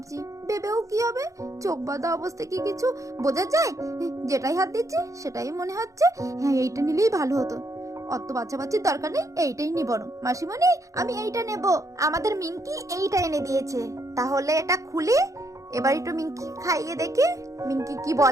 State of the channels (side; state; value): left; late; 0.15 ms